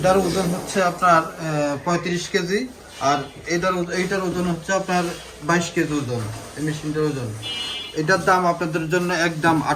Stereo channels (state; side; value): identical; both; correlation 1.00